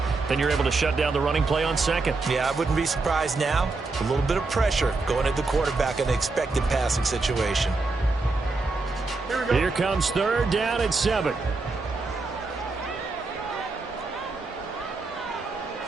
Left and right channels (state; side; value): quieter; left; 3.7 dB